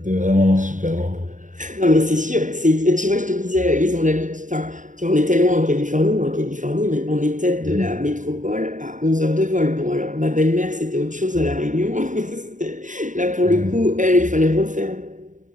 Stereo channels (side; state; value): left; late; 0.37 ms